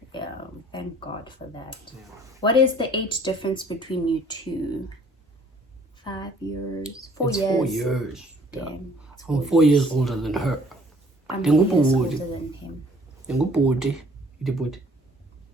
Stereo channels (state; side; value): normal; both; correlation 0.57